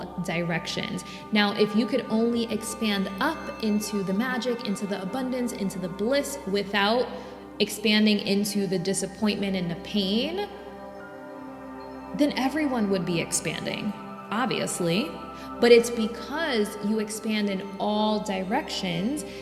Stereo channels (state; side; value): identical; both; correlation 1.00